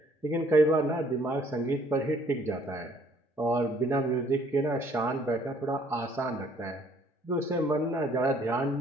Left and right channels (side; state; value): both; normal; correlation 0.61